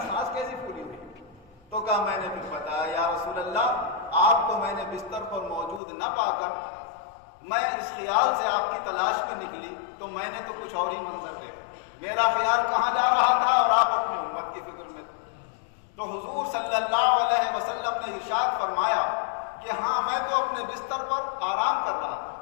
سانس کیسی پھولی ہوئی؟ تو کہا میں نے پھر بتایا، یا رسول اللہ آپ کو میں نے بستر پر موجود نہ پا کر میں اس خیال سے آپ کی تلاش میں نکلی تو میں نے تو کچھ اور ہی منظر دیکھا، میرا خیال کہاں جا رہا تھا اور آپ اپنی امت کی فکر میں تھے۔ تو حضور صلی اللہ علیہ وسلم نے ارشاد فرمایا کہ ہاں میں تو اپنے بستر پر آرام کر رہا تھا،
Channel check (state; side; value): drops out; right; at 5.8 s